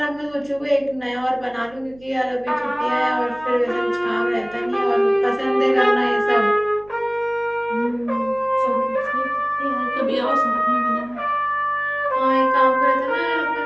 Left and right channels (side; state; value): right; noise; hum, 25 dB below the sound